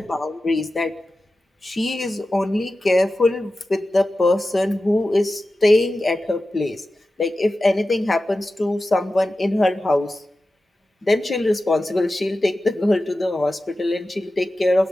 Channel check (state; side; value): normal; both; correlation 0.94